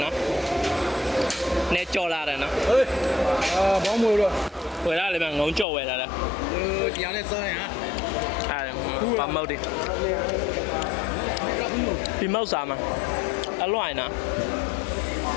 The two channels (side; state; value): right; drops out; at 5.7 s